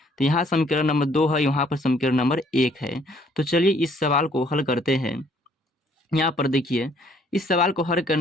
तो यहाँ समीकरण नंबर 2 है, यहाँ पर समीकरण नंबर 1 है। तो चलिए इस सवाल को हल करते हैं। यहाँ पर देखिए, इस सवाल को हल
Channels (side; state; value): both; normal; correlation 0.63